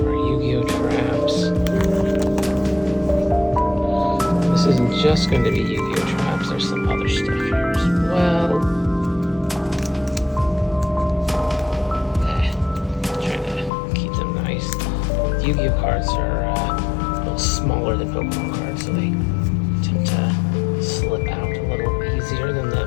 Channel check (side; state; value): right; drops out; at 13.7 s